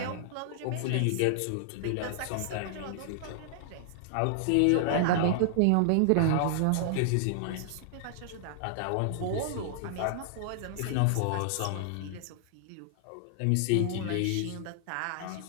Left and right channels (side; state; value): both; different; correlation -0.01